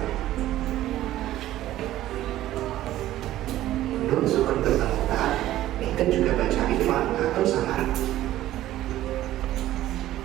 Nun sukun bertemu tak kita juga baca ikhwan atau samar.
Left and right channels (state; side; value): quieter; left; 14.2 dB